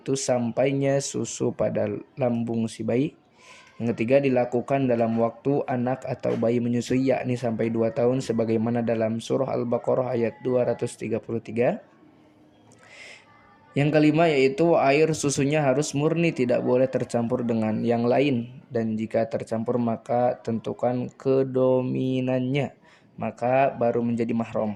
sampainya susu pada lambung si bayi. Yang ketiga dilakukan dalam waktu anak atau bayi menyusui yakni sampai 2 tahun sebagaimana dalam surah Al-Baqarah ayat 233. Yang kelima yaitu air susunya harus murni, tidak boleh tercampur dengan yang lain, dan jika tercampur maka tentukan kedominannya, maka baru menjadi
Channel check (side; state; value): both; identical; correlation 1.00